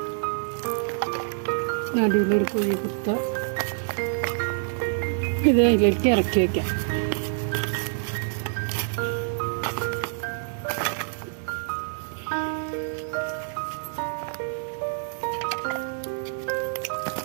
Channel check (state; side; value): silent; left; digital silence